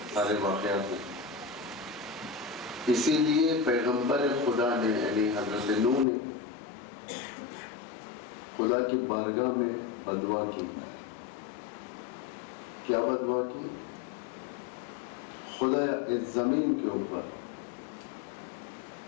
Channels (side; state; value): right; drops out; at 6.1 s